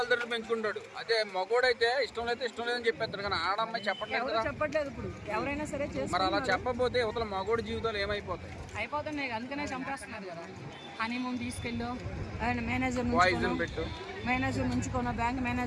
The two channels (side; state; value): both; identical; correlation 1.00